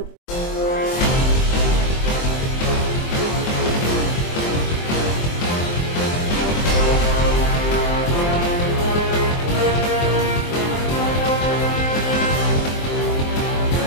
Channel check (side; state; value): right; late; 23 ms